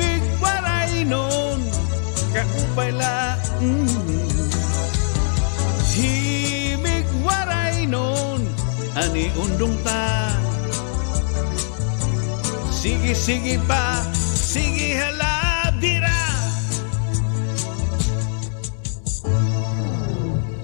waray nun kaupay la. Himig waray nun ani undong ta. Sige, sige pa,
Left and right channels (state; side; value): silent; right; 65 dB below the other